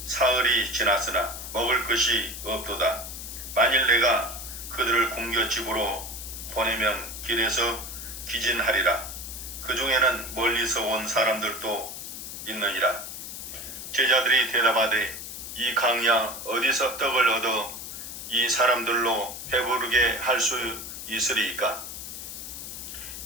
사흘이 지났으나 먹을 것이 없도다. 만일 내가 그들을 굶겨 집으로 보내면 길에서 기진하리라. 그 중에는 멀리서 온 사람들도 있느니라. 제자들이 대답하되 이 강야 어디서 떡을 얻어 이 사람들로 배부르게 할 수 있으리이까?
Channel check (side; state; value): left; noise; hiss, 9 dB below the sound